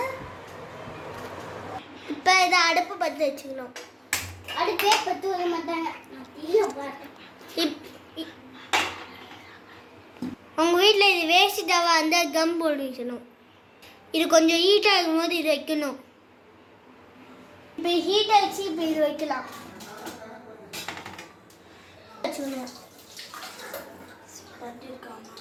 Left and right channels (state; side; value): identical; both; correlation 1.00